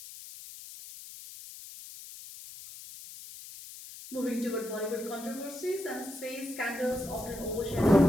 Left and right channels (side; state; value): left; noise; hiss, 14 dB below the sound